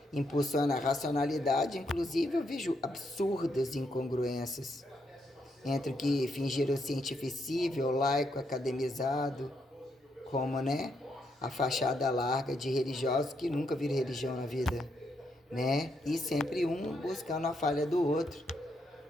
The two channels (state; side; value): normal; both; correlation 0.78